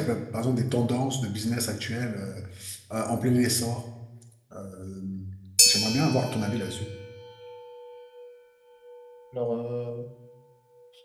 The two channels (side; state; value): both; identical; correlation 1.00